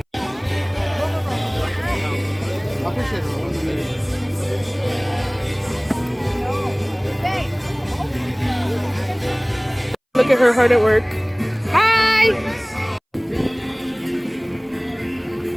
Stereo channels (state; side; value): identical; both; correlation 1.00